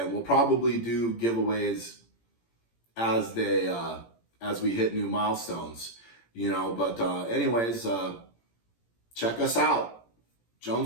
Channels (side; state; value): right; late; 17 ms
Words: we'll probably do giveaways as we hit new milestones, But anyways, check us out.